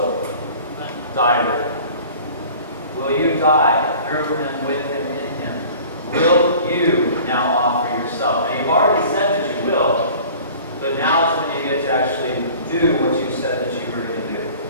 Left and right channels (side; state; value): both; inverted; correlation -0.45